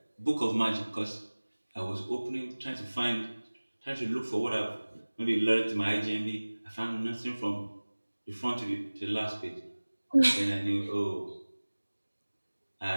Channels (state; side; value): inverted; both; correlation -1.00